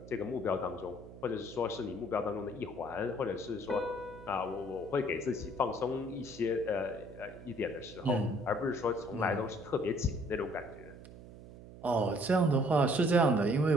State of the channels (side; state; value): right; noise; hum, 16 dB below the sound